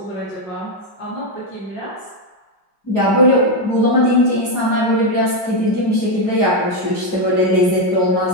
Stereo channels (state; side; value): late; right; 4.9 ms